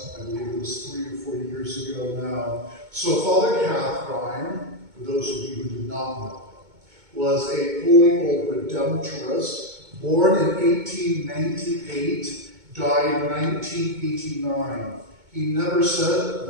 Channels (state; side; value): late; left; 2.2 ms